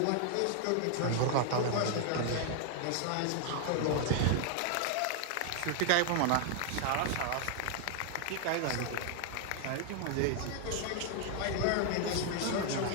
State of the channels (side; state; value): both; different; correlation 0.00